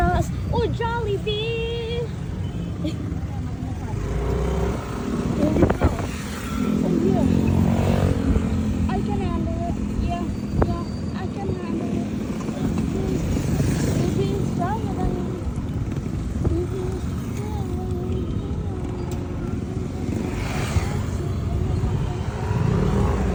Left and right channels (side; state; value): both; identical; correlation 1.00